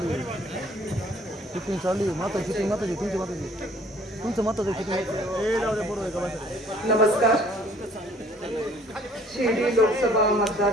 शूटिंग चालू आहे माता शूटिंग माताजी तुमचं माताचं नमस्कार। शिर्डी लोकसभा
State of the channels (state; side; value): normal; both; correlation 0.57